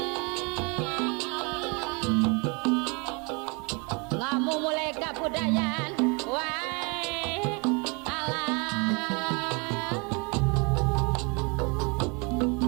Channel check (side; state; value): left; quieter; 31.0 dB